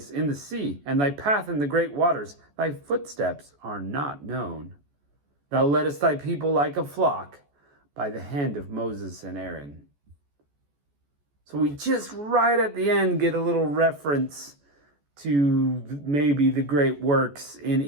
in the sea, and thy path in the great waters. Thy footsteps are not known. Thou leddest thy people like a flock by the hand of Moses and Aaron. So we just right at the end get a little reference to maybe the great works in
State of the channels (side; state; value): left; late; 14 ms